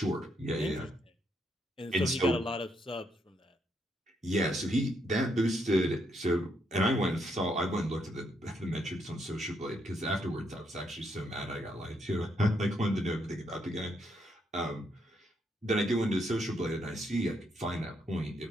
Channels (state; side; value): normal; both; correlation 0.76